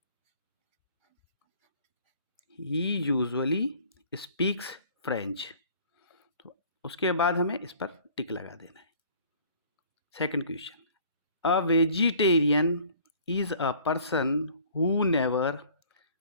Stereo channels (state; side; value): inverted; both; correlation -0.52